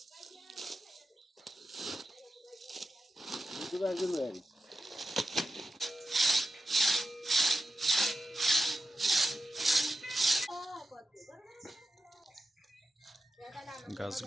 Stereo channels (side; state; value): both; normal; correlation 0.90